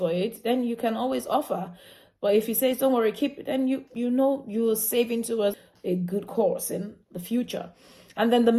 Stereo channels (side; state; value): both; identical; correlation 1.00